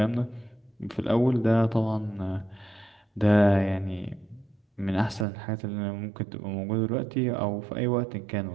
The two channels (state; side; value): drops out; left; at 5.2 s